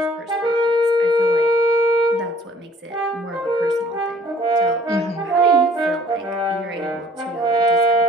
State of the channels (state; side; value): normal; both; correlation 0.55